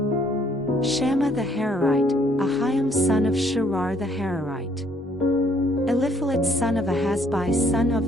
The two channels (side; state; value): both; normal; correlation 0.65